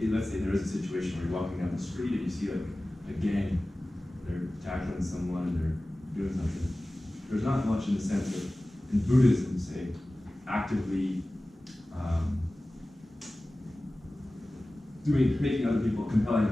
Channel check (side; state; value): both; normal; correlation 0.97